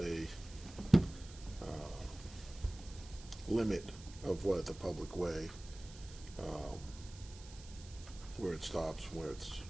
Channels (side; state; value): right; noise; hiss, 18 dB below the sound